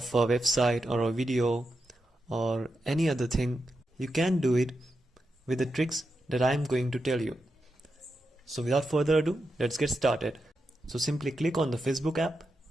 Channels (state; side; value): normal; both; correlation 0.88